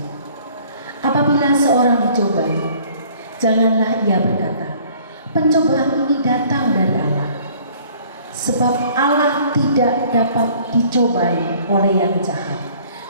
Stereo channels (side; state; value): both; inverted; correlation -0.55